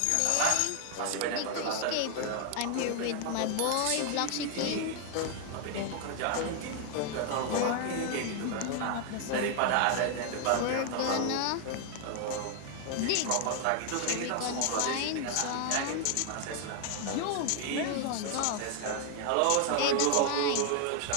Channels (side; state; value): both; different; correlation 0.00